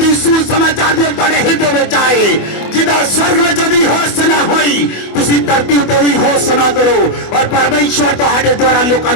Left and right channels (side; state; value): right; late; 24 ms